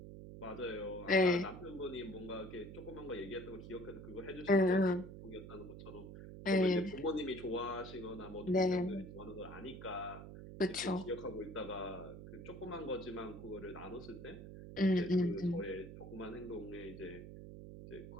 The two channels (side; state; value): right; noise; hum, 12 dB below the sound